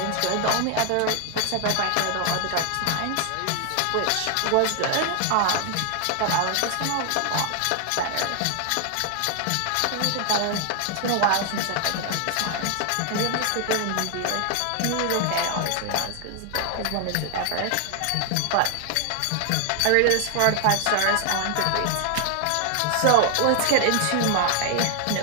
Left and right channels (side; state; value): both; different; correlation 0.00